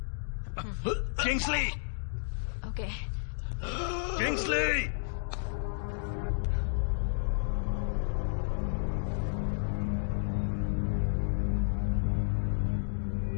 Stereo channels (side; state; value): right; silent; digital silence